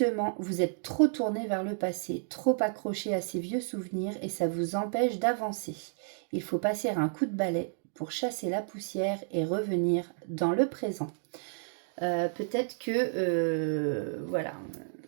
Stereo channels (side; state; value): left; silent; digital silence